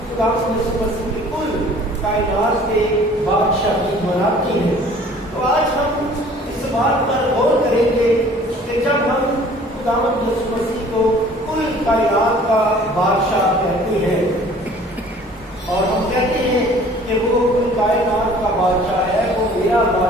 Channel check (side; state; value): both; normal; correlation 0.51